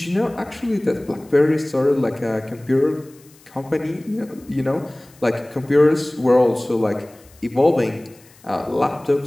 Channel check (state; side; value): noise; left; hiss, 27 dB below the sound